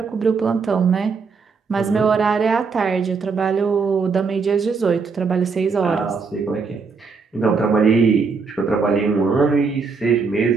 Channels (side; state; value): left; quieter; 4.9 dB